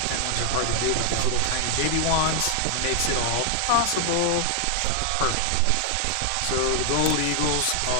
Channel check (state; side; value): different; both; correlation 0.00